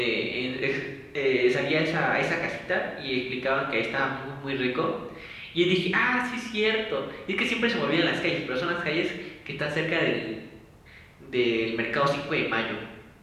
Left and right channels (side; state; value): both; identical; correlation 1.00